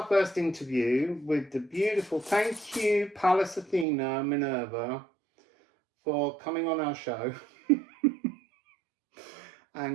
first interview with the beautiful, thank you, Pallas Athena, Minerva, for coming on our show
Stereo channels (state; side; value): drops out; left; at 3.9 s